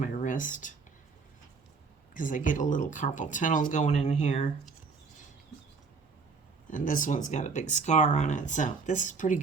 wrist because I get a little carpal tunnel going in here. And this one's got a big scar on it, so this is pretty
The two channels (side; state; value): left; quieter; 4.8 dB